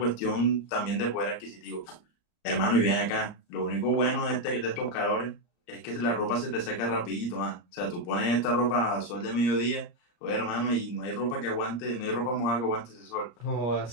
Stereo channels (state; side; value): late; right; 34 ms